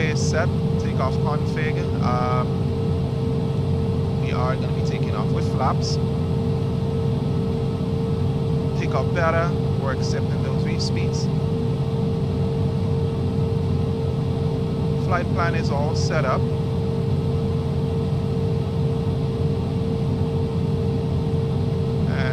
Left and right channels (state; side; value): identical; both; correlation 1.00